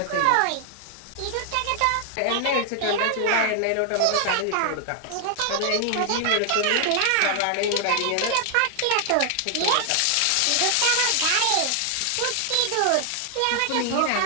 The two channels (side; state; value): both; different; correlation 0.00